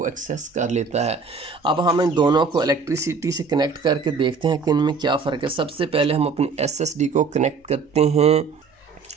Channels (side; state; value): left; quieter; 5.0 dB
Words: एक्सेस कर लेता है। अब हम इन दोनों को इलेक्ट्रिसिटी से कनेक्ट करके देखते हैं कि इनमें क्या फ़र्क है। सबसे पहले हम अपनी SSD को कनेक्ट करते हैं।